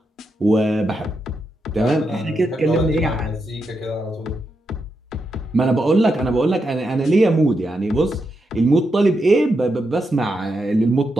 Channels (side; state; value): both; normal; correlation 0.84